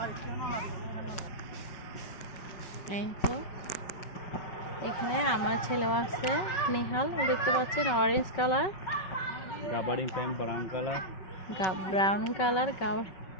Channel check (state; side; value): late; right; 5.3 ms